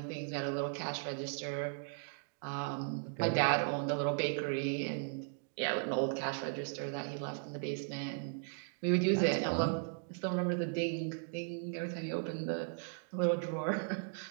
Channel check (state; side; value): silent; left; 53 dB below the other